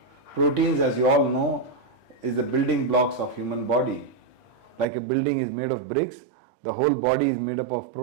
Proteins, as you all know, is the building blocks of human body. Like a building is made of bricks, the whole body is made up of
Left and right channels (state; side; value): drops out; left; at 4.9 s